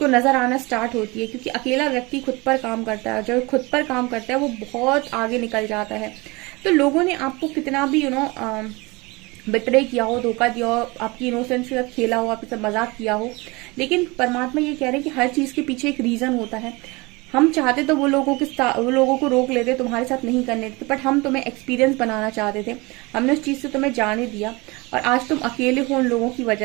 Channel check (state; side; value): quieter; left; 24.9 dB